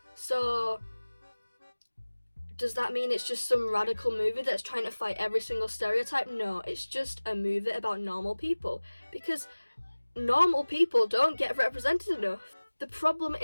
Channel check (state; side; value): inverted; both; correlation -1.00